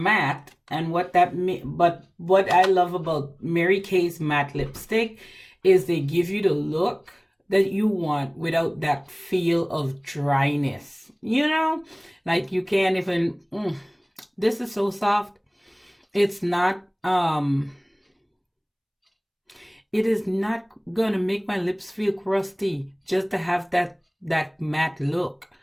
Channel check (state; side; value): identical; both; correlation 1.00